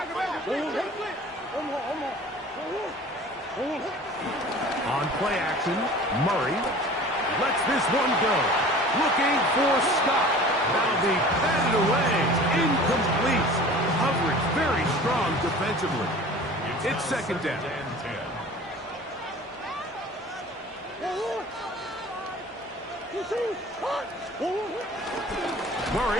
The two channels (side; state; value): both; normal; correlation 0.43